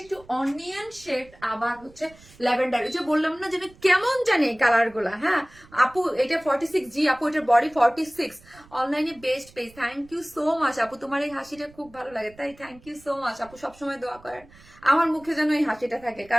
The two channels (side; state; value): right; noise; rumble, 25 dB below the sound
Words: একটু অনিয়ন শেড, আবার হচ্ছে ল্যাভেন্ডার। এই যে বললাম না যে কেমন জানি এই কালার গুলা। হ্যাঁ আপু, এটা 46 জি আপু, এটার বডি 46। অনলাইনে best page, thank you so much আপু। তোমার এই হাসিটা খুব ভালো লাগে, তাই থ্যাংক ইউ সো মাচ আপু। সবসময় দোয়া করেন আমার মুখে যেন এই হাসিটা থাকে,